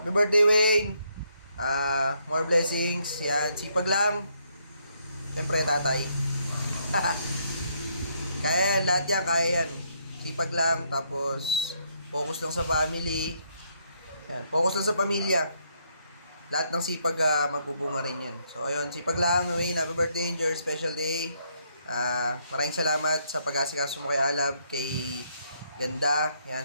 birthday, Wayne. More blessings. Yan, sipag lang. Siyempre, tatay. Kaya yan, lahat yan, kaya yan. Sipag lang, tapos focus lang sa family. Yan, focus lang sa pamilya. Lahat ng sipag magbubunga rin yan. So, ayun, sipag lang, Wayne. Happy birthday, enjoy your special day. Maraming salamat sa pag-asikaso mo kay Alab, kay Ganda, yan,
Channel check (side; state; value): both; inverted; correlation -0.73